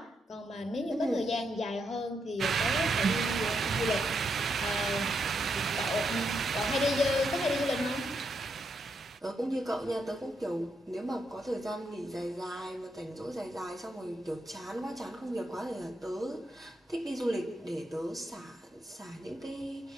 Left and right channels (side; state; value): both; normal; correlation 0.81